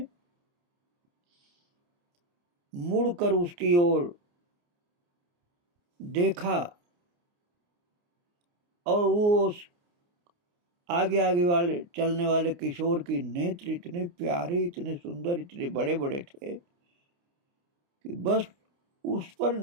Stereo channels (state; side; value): late; left; 29 ms